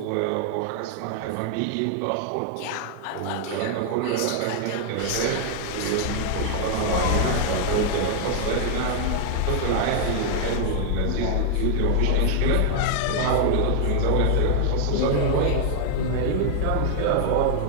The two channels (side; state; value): both; different; correlation 0.00